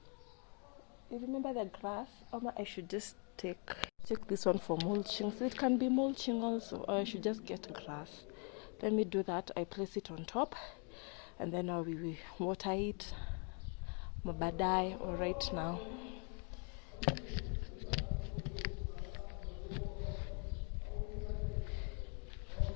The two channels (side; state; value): right; quieter; 37.3 dB